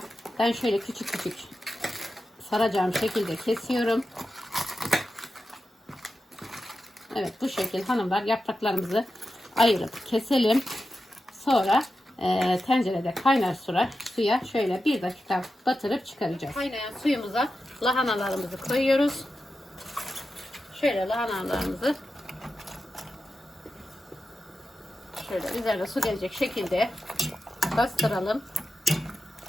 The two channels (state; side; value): normal; both; correlation 0.91